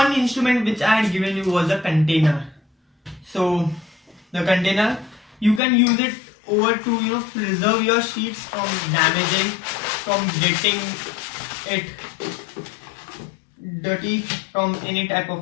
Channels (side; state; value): right; drops out; at 5.6 s